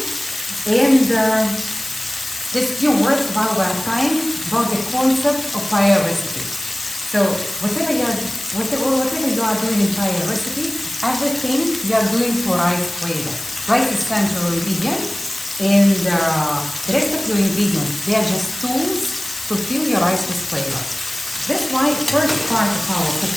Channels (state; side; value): noise; left; hiss, 10 dB below the sound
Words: And just few words while we're frying about the concept of paella recipe. So whatever you are doing in paella recipe, everything you are doing for rice flavor. Rice is central ingredient, and the rest of your ingredients, they are just tools to fill your rice with flavor. That's why first part of our